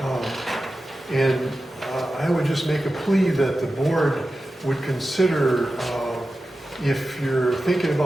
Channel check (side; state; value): both; normal; correlation 0.93